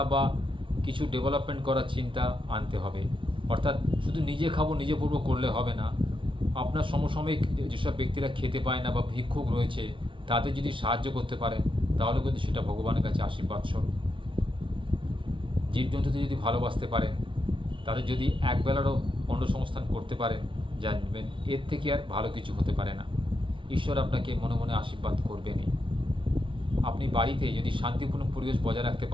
বা কিছু ডেভেলপমেন্ট করার চিন্তা আনতে হবে। অর্থাৎ শুধু নিজে খাবো, নিজে পড়বো করলে হবে না। আপনার সমসাময়িক যেসব ব্যক্তিরা খেতে পায় না বা ভিক্ষুক রয়েছে, তাদের যদি সাহায্য করতে পারেন, তাহলে কিন্তু সেটা ভগবানের কাছে আশীর্বাদ স্বরূপ। জীবজন্তুদের যদি ভালোবাসতে পারেন, তাদের যদি একবেলারও অন্নসংস্থান করতে পারেন, জানবেন এর থেকে আর ভালো কিছু হতে পারে না। ঈশ্বর আপনাকে মনে মনে আশীর্বাদ করবেনই। আপনি বাড়িতে যদি শান্তিপূর্ণ পরিবেশ বজায় রাখতে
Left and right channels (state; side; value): late; left; 0.25 ms